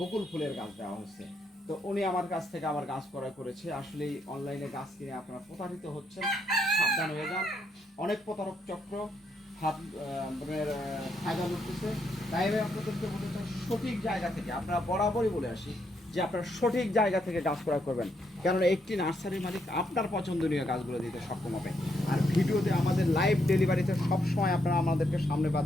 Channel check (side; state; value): both; normal; correlation 0.76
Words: ফুলের গাছ দেওয়া হয়েছে। তো উনি আমার কাছ থেকে আমার গাছ ক্রয় করেছে। আসলে অনলাইনে গাছ কিনে আপনারা প্রতারিত হচ্ছেন, সাবধান হয়ে যান। অনেক প্রতারক চক্র হাত ফায়দা করতেছে। তাই আমি আপনাদেরকে বলতে চাই, সঠিক জায়গা থেকে আপনারা বরাবরই বলে আসি যে আপনারা সঠিক জায়গা থেকে গাছ ক্রয় করবেন, কেননা একটি নার্সারির মালিক আপনার পছন্দনীয় গাছগুলো দিতে সক্ষম হবে। আর ভিডিওতে আমাদের লাইভ ডেলিভারিতে সবসময় আপনারা আমাদেরকে সামনে